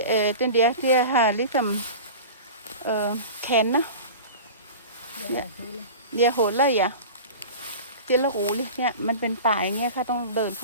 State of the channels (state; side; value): inverted; both; correlation -0.35